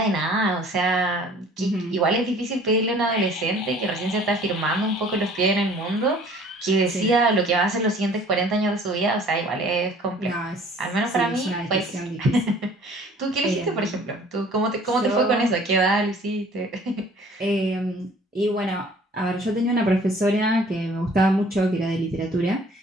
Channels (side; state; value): both; normal; correlation 0.52